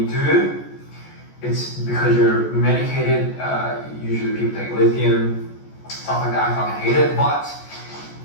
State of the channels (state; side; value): late; right; 14 ms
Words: do, it's because you're medicated. Usually people take lithium, stuff like that. I fucking hate it, but